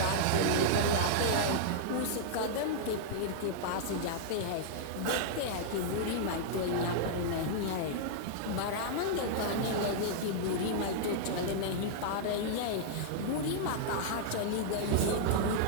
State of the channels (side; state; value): both; different; correlation -0.01